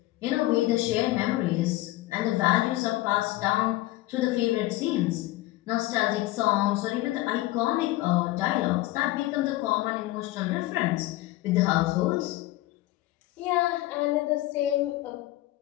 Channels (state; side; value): quieter; right; 17.4 dB